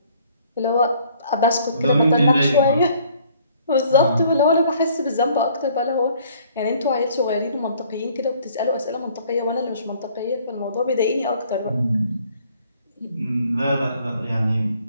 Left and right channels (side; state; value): both; inverted; correlation -0.59